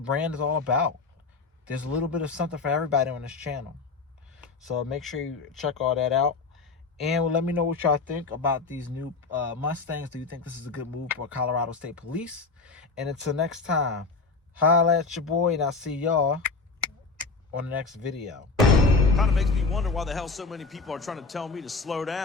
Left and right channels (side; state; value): right; quieter; 4.1 dB